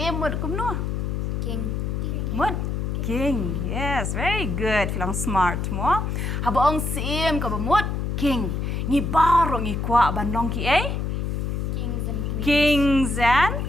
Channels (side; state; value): left; noise; hum, 1 dB below the sound